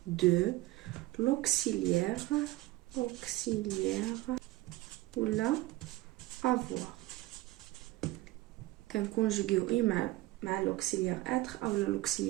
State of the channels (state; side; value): quieter; left; 18.0 dB